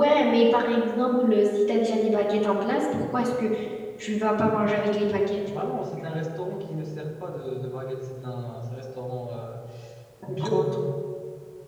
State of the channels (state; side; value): identical; both; correlation 1.00